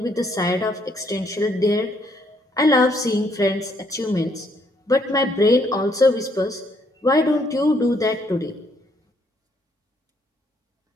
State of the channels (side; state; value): both; normal; correlation 0.70